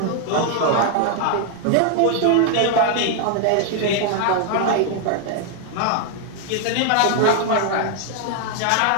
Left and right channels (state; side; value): different; both; correlation 0.00